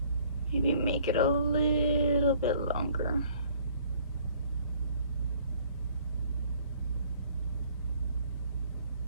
maybe make it a little bit longer.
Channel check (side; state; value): both; inverted; correlation -0.58